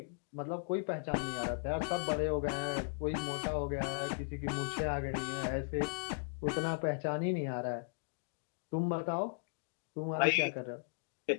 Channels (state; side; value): silent; right; digital silence